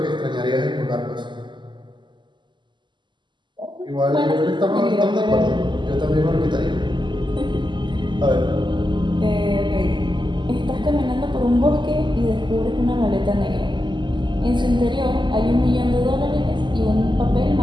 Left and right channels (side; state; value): left; late; 0.22 ms